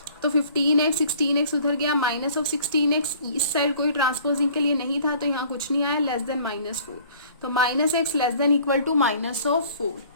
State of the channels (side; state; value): both; inverted; correlation -0.53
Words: तो 15x 16x उधर गया, माइनस ऑफ 16x इस साइड कोई ट्रांसपोजिंग के लिए नहीं था तो यहाँ कुछ नहीं आया, लेस देन -4। तो minus x less than equal to minus of 4।